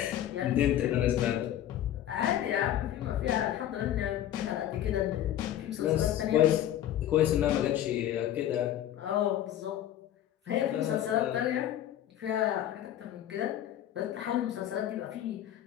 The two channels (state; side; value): quieter; right; 11.7 dB